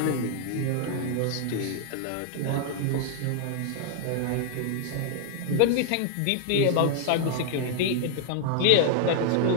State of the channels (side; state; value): both; different; correlation -0.01